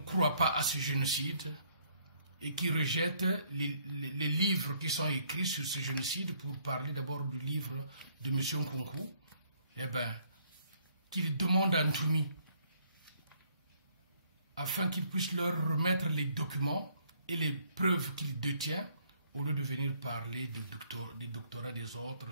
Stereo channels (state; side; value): inverted; both; correlation -0.66